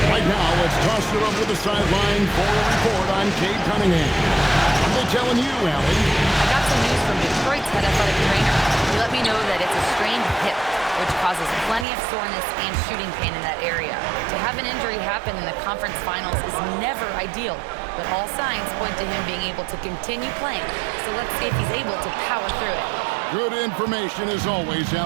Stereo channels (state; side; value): drops out; left; at 11.9 s